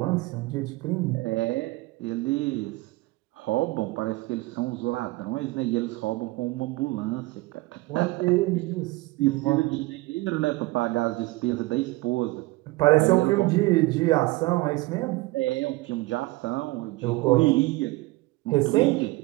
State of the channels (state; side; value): quieter; left; 21.2 dB